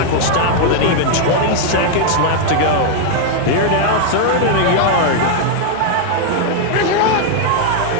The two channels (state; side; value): different; both; correlation 0.00